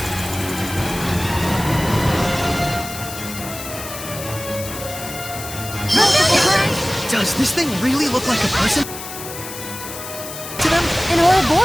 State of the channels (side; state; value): left; noise; hiss, 10 dB below the sound